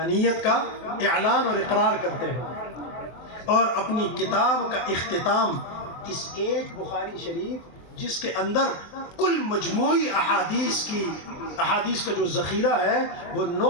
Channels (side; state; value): right; late; 24 ms